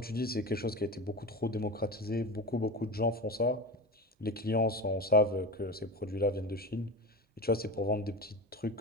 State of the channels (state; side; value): normal; both; correlation 0.25